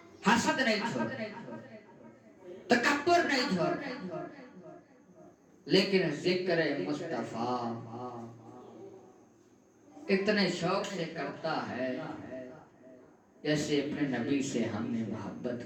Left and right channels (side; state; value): both; identical; correlation 1.00